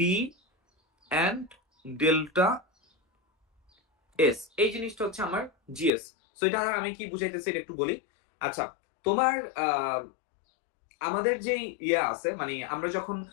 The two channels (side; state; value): right; drops out; at 5.9 s